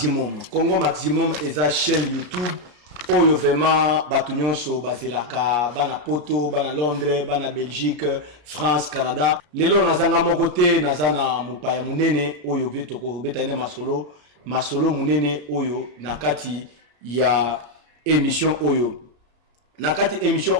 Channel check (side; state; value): left; late; 33 ms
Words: Congo Maximum eza chaîne YouTube Oyo vraiment batunyonso bazelaka bana poto bana Londres bana Belgique France Canada lelo nazanga moko te nazana mupaya munene oyo betoko betane masolo munene oyo nakati ya émission oyo nakati émission